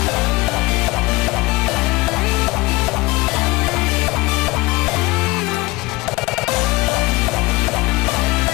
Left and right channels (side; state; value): right; quieter; 21.9 dB